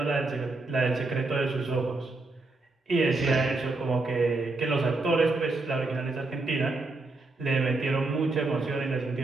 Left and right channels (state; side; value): quieter; left; 3.3 dB